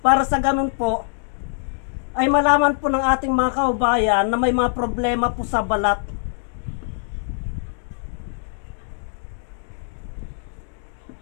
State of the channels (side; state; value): right; silent; digital silence